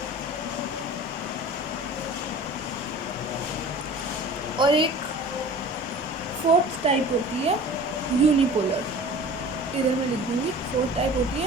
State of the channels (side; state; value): both; normal; correlation 0.41